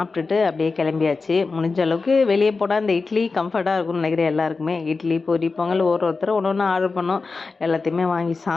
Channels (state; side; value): quieter; right; 4.2 dB